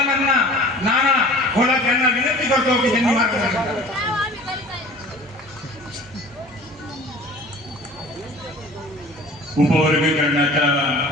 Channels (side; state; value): both; normal; correlation 0.44